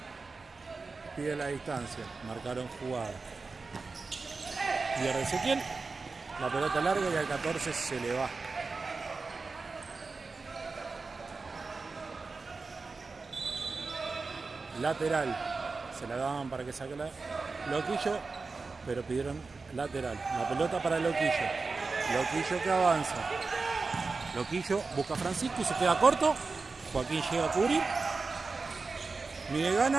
Pide la distancia. Marcaron jugada. Pierde Ezequiel. La pelota larga y al 14 se le va. Lateral. Se la daban para que saque la Loquillo, pero pidieron lateral. La pelota para Loquillo. Loquillo que avanza. Loquillo busca a Francisco y se queda corto. Joaquín llega a cubrir. Miguel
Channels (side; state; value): left; quieter; 4.1 dB